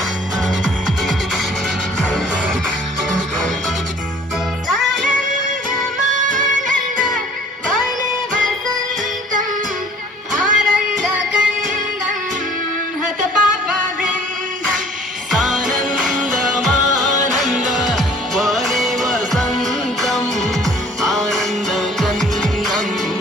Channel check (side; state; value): both; normal; correlation 0.53